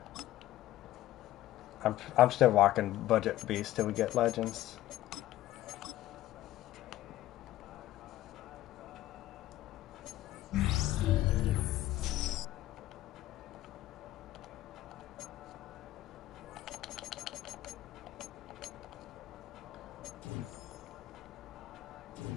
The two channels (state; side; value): quieter; right; 14.8 dB